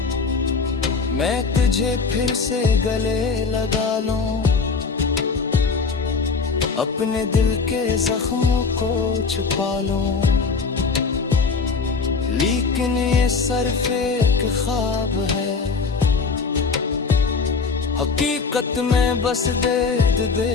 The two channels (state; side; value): quieter; right; 4.8 dB